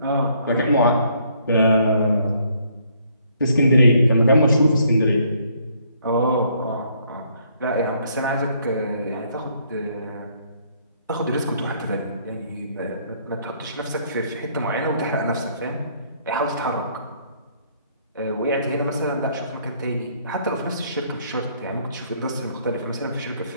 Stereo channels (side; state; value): both; inverted; correlation -0.66